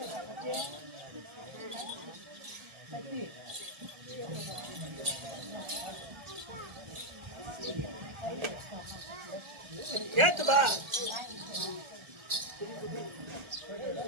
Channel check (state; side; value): late; left; 1.4 ms